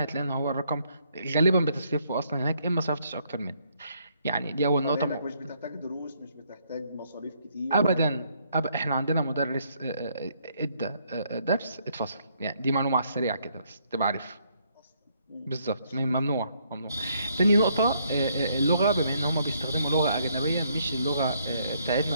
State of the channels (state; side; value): inverted; both; correlation -0.70